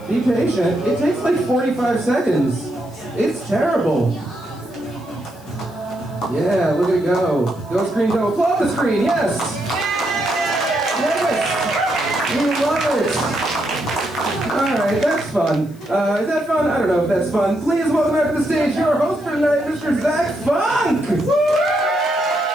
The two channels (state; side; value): noise; left; hiss, 27 dB below the sound